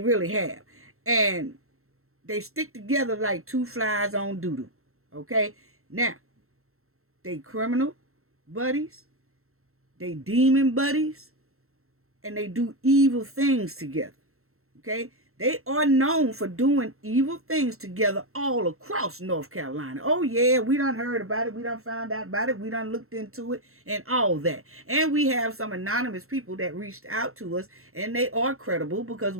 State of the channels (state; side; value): late; left; 0.63 ms